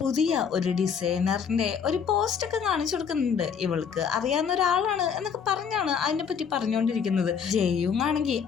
പുതിയ ഒരു ഡിസൈനറിന്റെ ഒരു പോസ്റ്റ് ഒക്കെ കാണിച്ചു കൊടുക്കുന്നുണ്ട്. ഇവൾക്ക് അറിയാവുന്ന ഒരാളാണ് എന്നൊക്കെ പറഞ്ഞാണ് അതിനെ പറ്റി പറഞ്ഞുകൊണ്ടിരിക്കുന്നത്. ജെയുങ് ആണെങ്കിൽ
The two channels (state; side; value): quieter; right; 6.9 dB